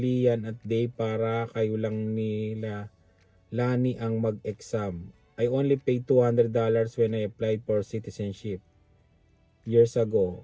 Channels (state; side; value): identical; both; correlation 1.00